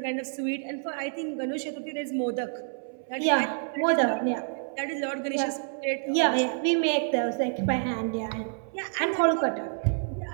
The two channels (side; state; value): left; silent; 59 dB below the other